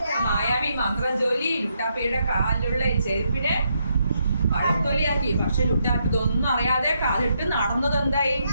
മായാവി മന്ത്രം ചൊല്ലി ലുട്ടാപ്പിയുടെ കാലിലുള്ള ചെരുപ്പിനെ പഴത്തൊലിയാക്കി. പക്ഷെ ലുട്ടാപ്പി ഇതൊന്നും അറിയാതെ കാലിട്ട് നടന്നത് എന്തായി?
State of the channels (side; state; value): both; inverted; correlation -0.78